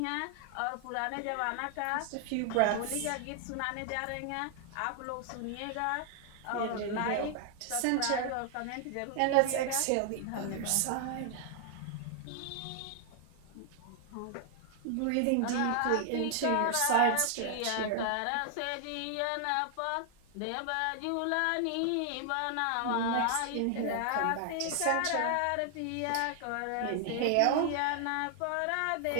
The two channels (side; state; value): both; different; correlation 0.00